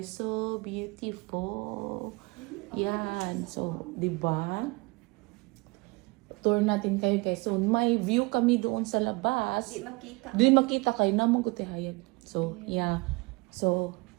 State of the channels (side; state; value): left; quieter; 26.6 dB